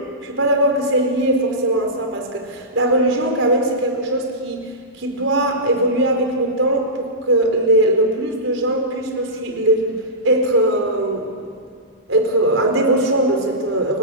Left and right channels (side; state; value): both; normal; correlation -0.16